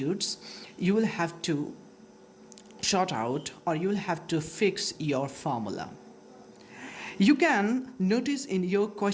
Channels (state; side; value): identical; both; correlation 1.00